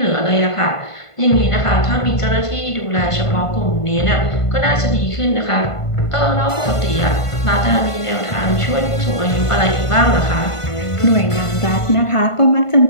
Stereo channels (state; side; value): late; right; 1.5 ms